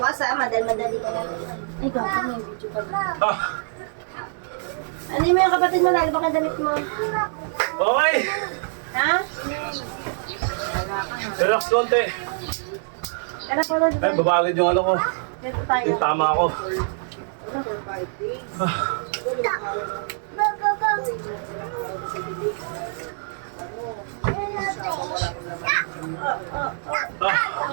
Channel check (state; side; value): silent; left; digital silence